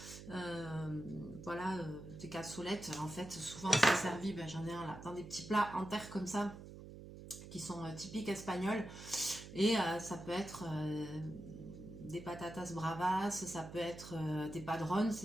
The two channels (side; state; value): right; noise; hum, 13 dB below the sound